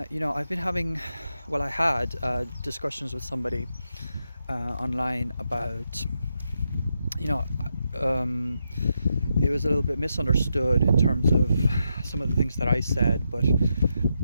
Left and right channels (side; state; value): both; inverted; correlation -0.84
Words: been having, I had discussions with somebody online about, you know, um, it was a little bit misunderstood in terms of some of the things that I said, but